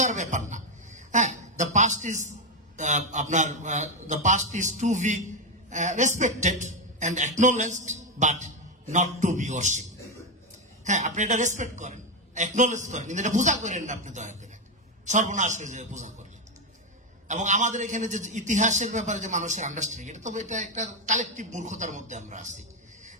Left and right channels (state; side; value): normal; both; correlation 0.07